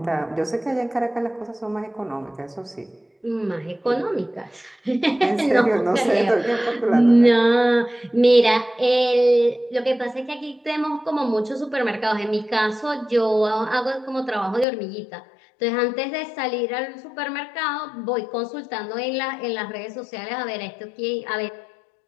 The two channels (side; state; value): right; drops out; at 14.7 s